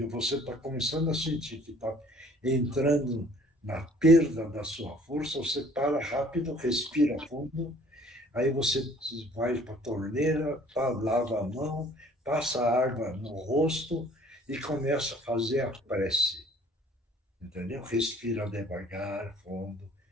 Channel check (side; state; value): both; normal; correlation 0.55